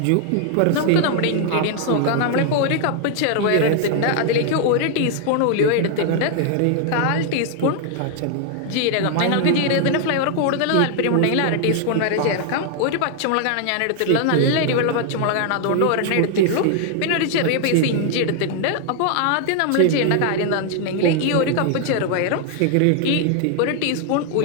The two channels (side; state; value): both; different; correlation 0.00